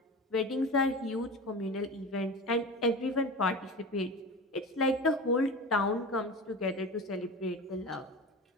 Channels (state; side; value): normal; both; correlation 0.30